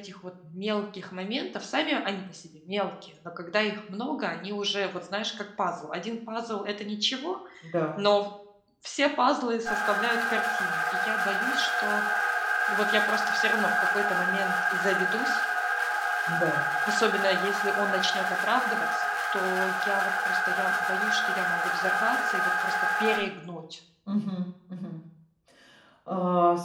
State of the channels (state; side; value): identical; both; correlation 1.00